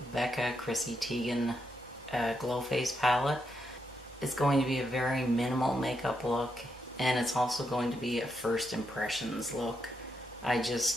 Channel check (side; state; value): both; normal; correlation 0.81